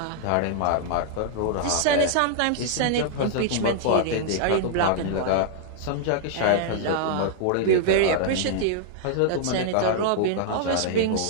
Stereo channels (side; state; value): both; different; correlation -0.01